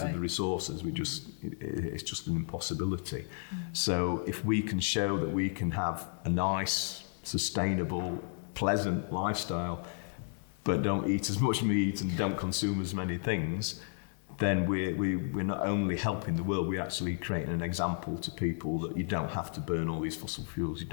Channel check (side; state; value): right; silent; digital silence